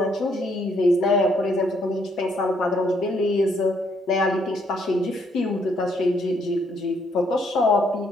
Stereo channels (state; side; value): normal; both; correlation 0.70